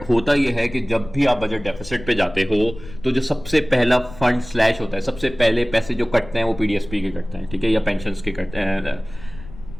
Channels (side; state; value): left; noise; rumble, 16 dB below the sound